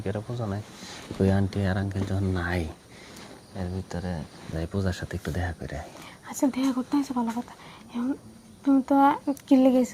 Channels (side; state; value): both; identical; correlation 1.00